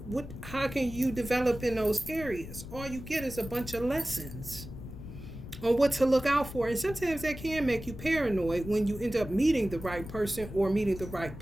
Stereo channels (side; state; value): left; noise; rumble, 12 dB below the sound